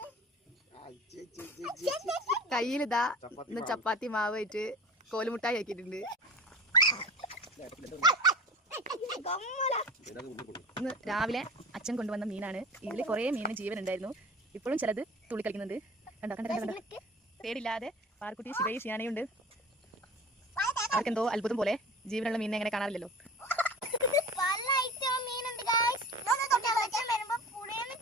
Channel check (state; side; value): normal; both; correlation 0.37